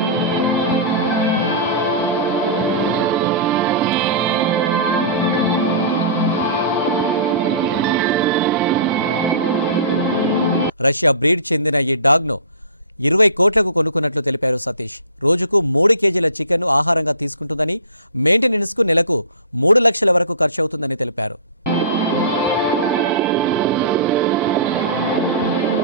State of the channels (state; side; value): inverted; both; correlation -0.38